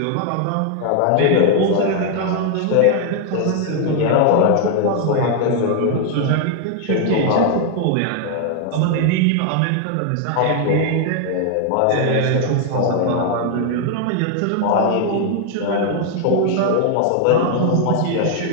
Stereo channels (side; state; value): both; different; correlation 0.00